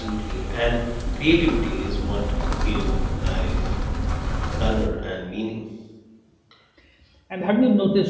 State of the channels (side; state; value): both; identical; correlation 1.00